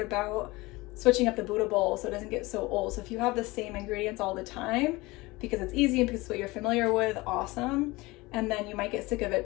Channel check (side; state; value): right; quieter; 22.0 dB